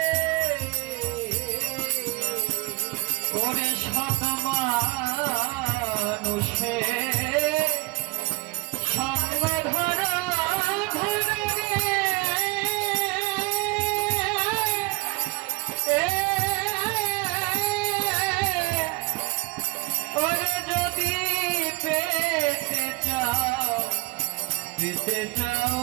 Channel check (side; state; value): left; quieter; 26.0 dB